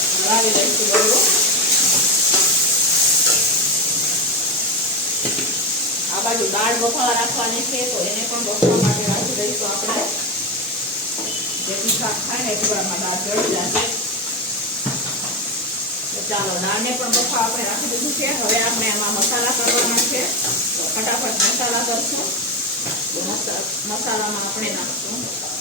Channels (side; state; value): both; normal; correlation 0.15